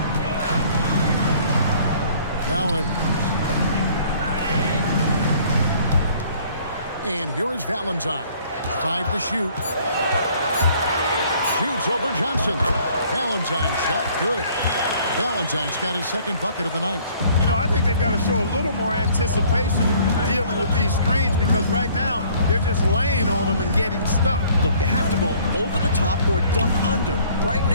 Now Edwards. And here is Valentine. 5 to shoot. Shoots over Johnson. Valentine shot good. Valentine's got his second bucket of the night. You know, I think they've got to show a little more anticipation dealing with these screens because right now they're just laying on them and getting stuck. Look, you have to go over the top or duck under. Right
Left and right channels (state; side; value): inverted; both; correlation -0.57